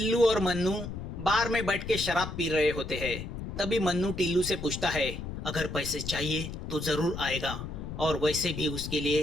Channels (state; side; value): noise; left; rumble, 7 dB below the sound